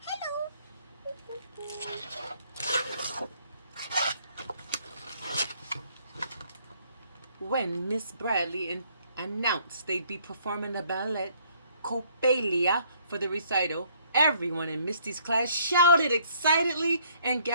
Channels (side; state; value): both; inverted; correlation -0.64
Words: hello. When Miss Bradley announced they'd be performing the ballet Copelia for the recital, everyone in Misty's class shouted excitedly and